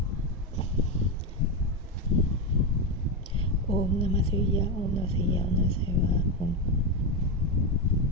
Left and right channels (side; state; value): both; normal; correlation 0.11